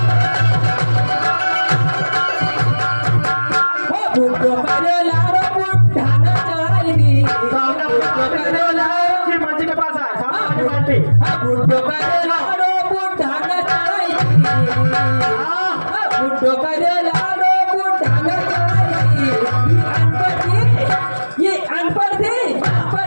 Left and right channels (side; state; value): both; inverted; correlation -1.00